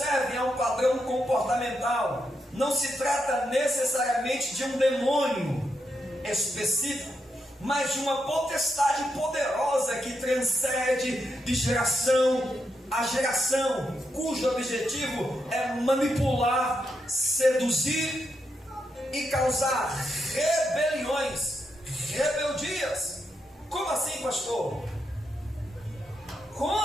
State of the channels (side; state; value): both; normal; correlation 0.83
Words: é um padrão comportamental. Não se trata necessariamente de um demônio específico, mas de uma potestade poderosa que transcende de geração a geração, cujo objetivo é manipular, seduzir e causar rebeliões, rebeldias. Como assim, pastor?